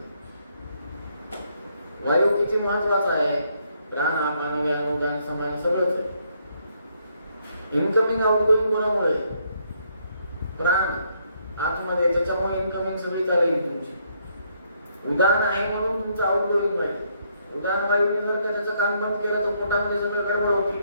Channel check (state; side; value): inverted; both; correlation -0.72